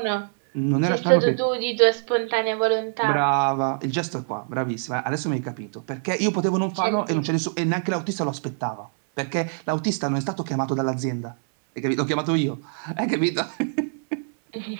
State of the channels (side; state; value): left; silent; 59 dB below the other